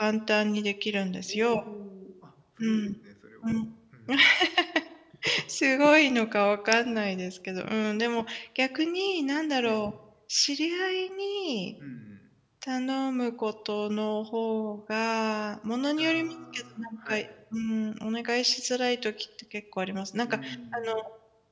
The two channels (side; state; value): both; identical; correlation 1.00